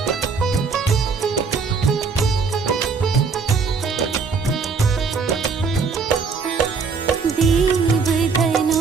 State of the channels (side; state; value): left; quieter; 5.0 dB